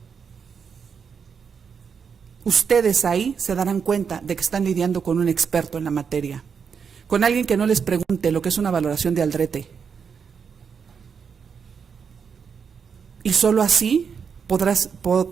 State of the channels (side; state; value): left; quieter; 6.4 dB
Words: Ustedes ahí se darán cuenta de que están lidiando con un experto en la materia, con alguien que no les pregunte lo que es una valoración de Aldrete. Y solo así